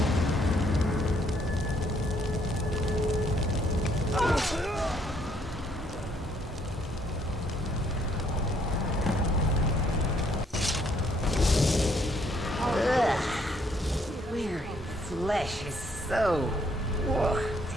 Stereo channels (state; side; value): normal; both; correlation 0.68